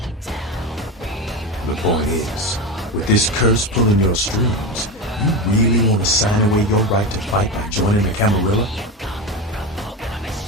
The point is, with this curse pulling your strings, you really want to sign away your right to fight by joining the Camarilla?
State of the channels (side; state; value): both; normal; correlation 0.21